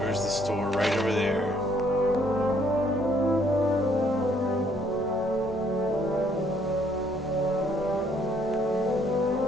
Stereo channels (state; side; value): normal; both; correlation 0.66